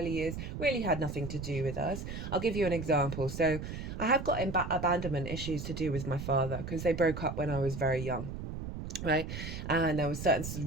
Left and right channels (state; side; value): noise; right; rumble, 7 dB below the sound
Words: years really had nothing to do with us. I'll give you an example. So I have got abandonment issues to do with my father because they broke up when I was very young. Right. And there were certain